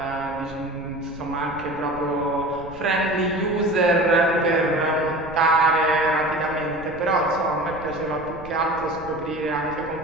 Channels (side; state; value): right; noise; rumble, 18 dB below the sound